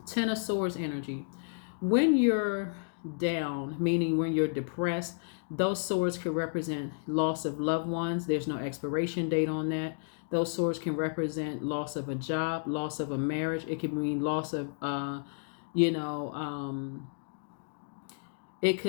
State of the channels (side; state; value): right; silent; digital silence